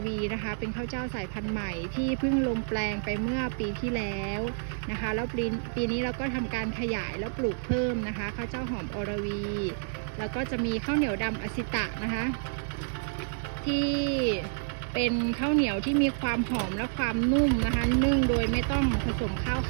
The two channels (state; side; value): silent; left; digital silence